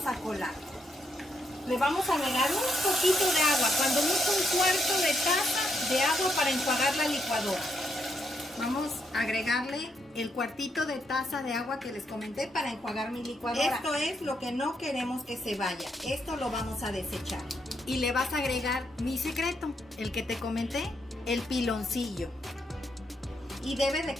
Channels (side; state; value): both; normal; correlation 0.78